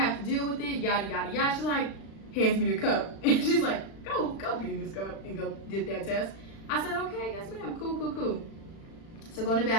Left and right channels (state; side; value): late; right; 36 ms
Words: to deal with it, yada, yada, yada. She's like, hands me the cup. And she's like, go pee in this cup and go get that test. I said, okay, yes, ma'am. Cool. So go in the